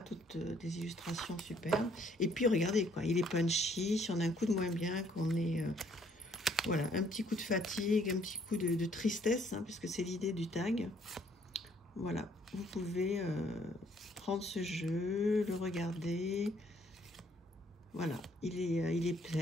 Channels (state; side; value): normal; both; correlation 0.64